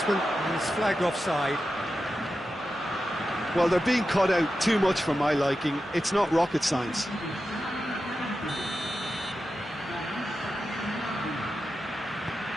is flagged offside. Well, they're being cut out too much for my liking. It's not rocket science.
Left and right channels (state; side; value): normal; both; correlation 0.91